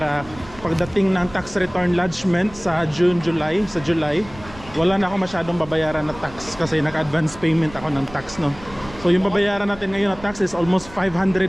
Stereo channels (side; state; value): right; noise; rumble, 18 dB below the sound